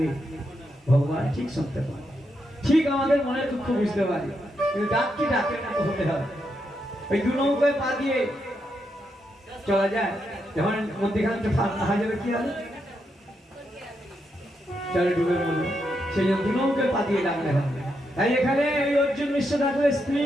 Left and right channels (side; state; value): both; normal; correlation 0.82